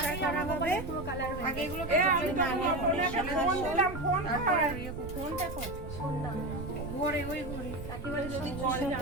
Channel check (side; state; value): right; noise; rumble, 9 dB below the sound